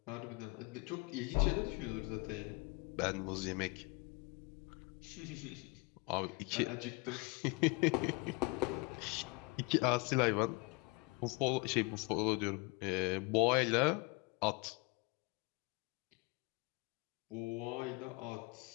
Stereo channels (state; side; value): quieter; right; 27.8 dB